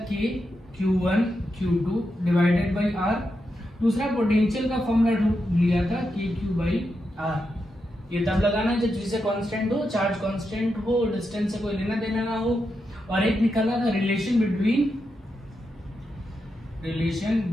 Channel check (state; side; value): normal; both; correlation 0.86